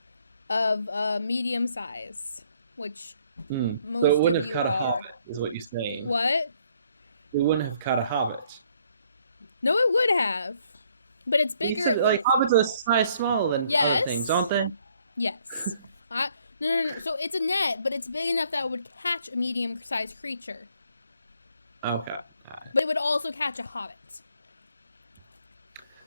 of medium size, which So most it of wouldn't have you caught a are. hobbit, is what you're saying. What? It wouldn't have caught a hobbit. No, it would have, but it's You bigger. said, like, hobbits are a size smaller than other things, aren't they? Yes. No. So it's a net, but it's big enough that it would catch a medium-sized creature. Okay. But it would also catch a hobbit.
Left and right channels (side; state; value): both; inverted; correlation -0.66